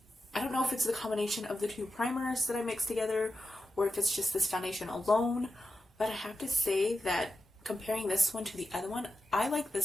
I don't know if it's the combination of the two primers that I mixed together or if it's just this foundation alone. But I have to say that comparing this one to the other one, I like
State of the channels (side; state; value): both; normal; correlation 0.91